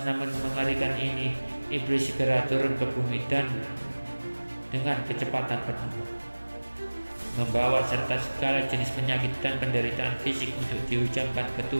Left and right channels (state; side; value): inverted; both; correlation -1.00